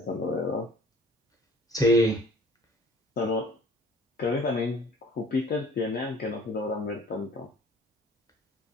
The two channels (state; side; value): normal; both; correlation 0.50